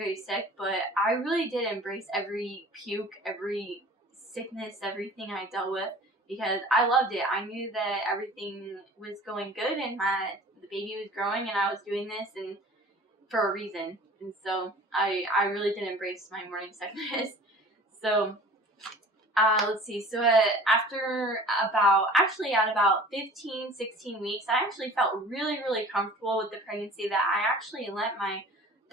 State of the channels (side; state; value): both; normal; correlation 0.44